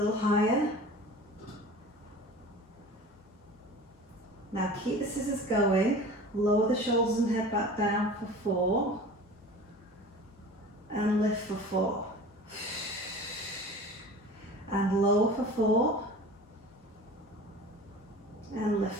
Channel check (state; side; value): normal; both; correlation 0.39